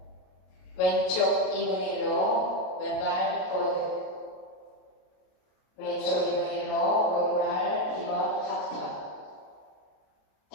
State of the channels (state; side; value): late; right; 33 ms